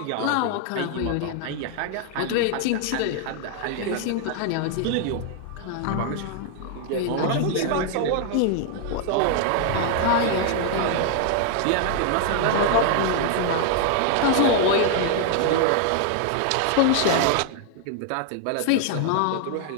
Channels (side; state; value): both; different; correlation 0.00